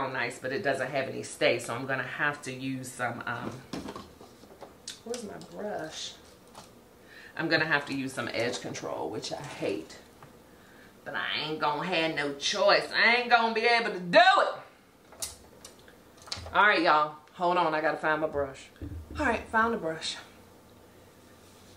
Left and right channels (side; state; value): both; identical; correlation 1.00